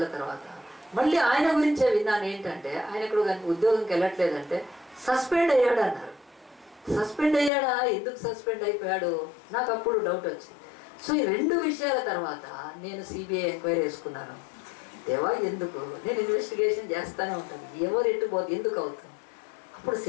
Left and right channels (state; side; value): drops out; right; at 7.5 s